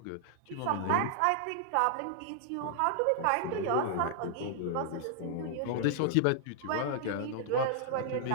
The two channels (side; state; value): both; different; correlation -0.01